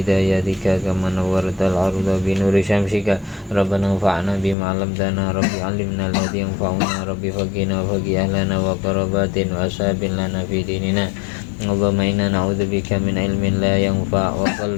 hidayatika kama nawwartal arda bi nuri syamsika. Rabbana anfa'na bima 'allamtana. Rabbi 'allimna alladhi yanfa'una. Rabbi faqina wa faqih ahlana wa qarabatin wa ashabin lana fi dinina. Allahumma inna na'udzubika min ilmin la yanfa' wa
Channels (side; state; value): right; drops out; at 4.5 s